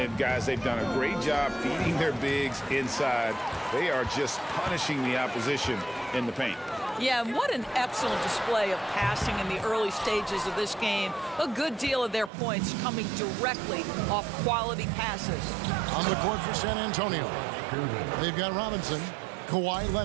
guys, they've done a great job feeding their bigs inside. They are just punishing the opposition in the paint. Yeah, what an excellent display of passing in the early stages of this game. A good deal of their points coming directly off quality passes. On the court for San Antonio, they've got Robinson. Kawhi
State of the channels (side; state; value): left; drops out; at 12.3 s